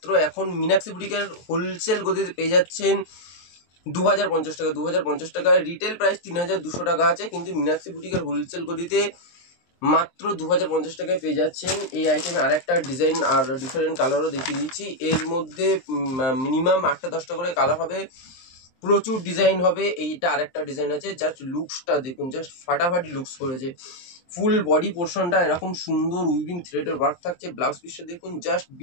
এখন মীনাক্ষী বুটিকের হোলসেল গতিতে পেয়ে যাচ্ছেন 2050 টাকা। 2050 টাকা রিটেল প্রাইস 3200 টাকা আছে, কিন্তু মীনাক্ষী বুটিকের হোলসেল গতিতে মাত্র 2050 টাকায় পেয়ে যাচ্ছেন এই আইটেমে। আর একটা ডিজাইন আর ডিফারেন্ট কালারও দেখিয়ে দিচ্ছি। এর মধ্যে মিনিমাম 8-10টা করে কালার হবে, প্রচুর ডিজাইন হবে। এইটা আরেকটা ডিজাইন আছে, জাস্ট লুকসটা দেখুন, জাস্ট ফাটাফাটি লুকস করেছে। ফুল বডি পোর্শনটা এরকম সুন্দর উইভিং থ্রেডের ওয়ার্ক থাকছে। ব্লাউজ পিসটা দেখুন, জাস্ট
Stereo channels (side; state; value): right; late; 23 ms